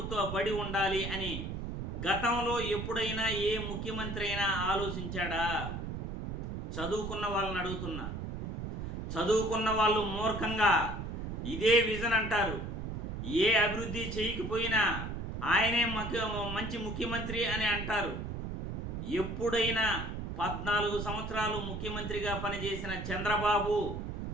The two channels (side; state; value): right; noise; rumble, 5 dB below the sound